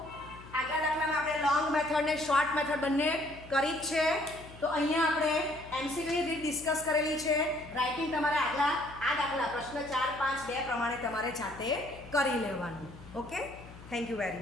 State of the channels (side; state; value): left; noise; hum, 18 dB below the sound